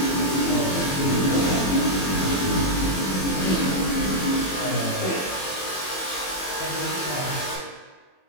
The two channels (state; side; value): late; right; 21 ms